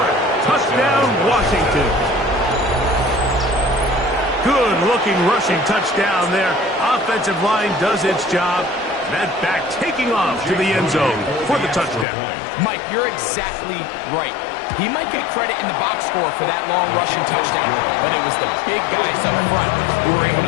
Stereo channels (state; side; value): drops out; right; at 12.1 s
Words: Touchdown, Washington. Good-looking rushing touchdown there. Offensive line does its job. That back taking off to the end zone for the touchdown. Mike, you're exactly right. He might get credit in the box score for that long rushing touchdown, but it was the big guys up front who were able